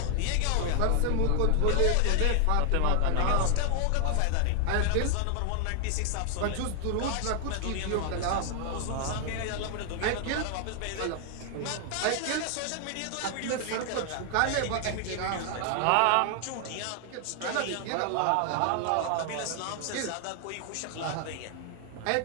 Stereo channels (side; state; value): both; different; correlation 0.00